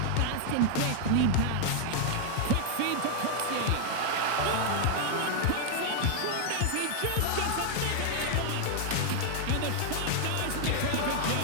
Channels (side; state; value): both; different; correlation 0.00